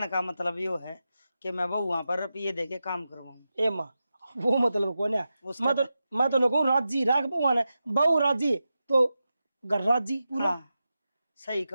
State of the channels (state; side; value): inverted; both; correlation -0.91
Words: का मतलब यो है कि मैं बहुआ पर रुपये दे के काम करवाऊँ। ए माँ वो मतलब को न उसका मैं तो नको राजी राख बहुआ ने, बहु राजी तो घर राजी पूरा। हाँ, सही